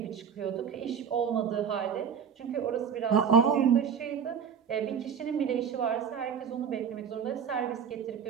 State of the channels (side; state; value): left; quieter; 7.3 dB